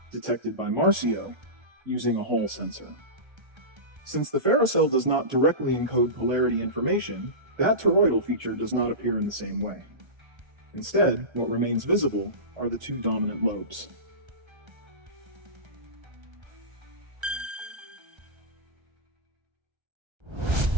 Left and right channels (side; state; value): left; late; 1.3 ms